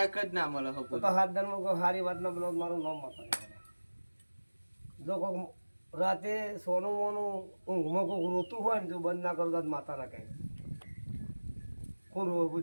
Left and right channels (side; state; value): both; inverted; correlation -1.00